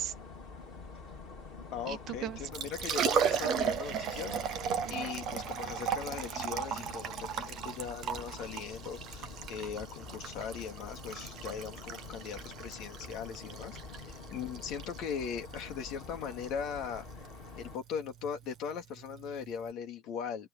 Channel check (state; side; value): normal; both; correlation 0.41